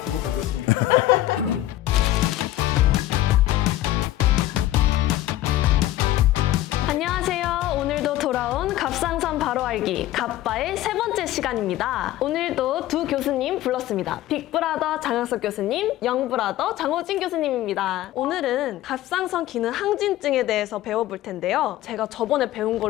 두고 보겠습니다. 안녕하세요. 오늘도 돌아온 갑상선 바로 알기 갑바의 세 번째 시간입니다. 오늘도 두 교수님 불렀습니다. 빅브라더 장학석 교수님, 영브라더 장호진 교수님입니다. 오늘은 갑상선 기능 항진증에 대해서 배워볼 텐데요. 제가 저번에 배운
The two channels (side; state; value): right; quieter; 14.6 dB